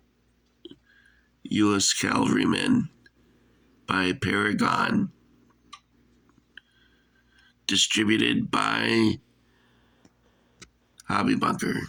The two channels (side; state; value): both; identical; correlation 1.00